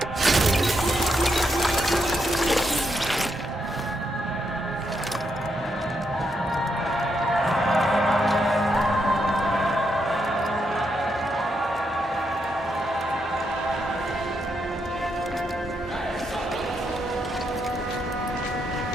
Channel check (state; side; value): normal; both; correlation 0.80